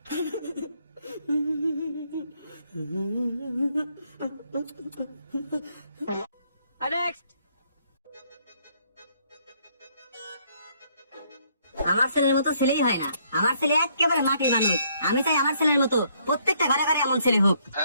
আমার ছেলের মতো ছেলেই হয় না, আমার ছেলে একেবারে মাটির মানুষ। আমি চাই আমার ছেলের মতো প্রত্যেকটা ঘরে ঘরে এমন ছেলে হোক।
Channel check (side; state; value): both; inverted; correlation -0.68